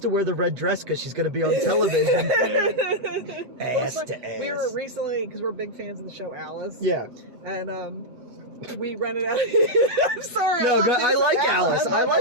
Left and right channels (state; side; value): late; left; 8.0 ms